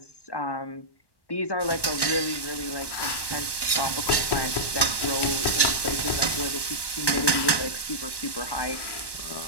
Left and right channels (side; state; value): right; late; 1.1 ms